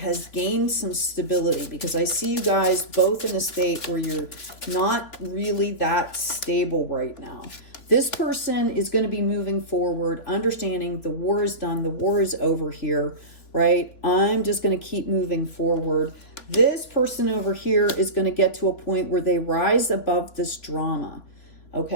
gained some stability, because I see you guys both in a state where you're not really that stable right now. This person is going to be moving forward, understanding the war is done, the war is over here, right? I'm just going to keep moving forward. This person over here is going to get to a point where they rise above this drama,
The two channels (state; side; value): late; right; 3.5 ms